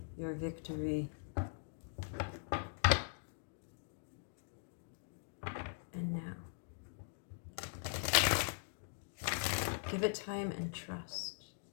your victory and now. Give it time and trust.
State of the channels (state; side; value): silent; right; digital silence